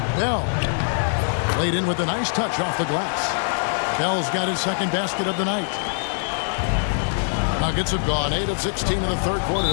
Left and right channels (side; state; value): right; silent; digital silence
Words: Bell laid in with a nice touch off the glass. Bell's got his second basket of the night. Nuggets have gone 8 of 16 in the third quarter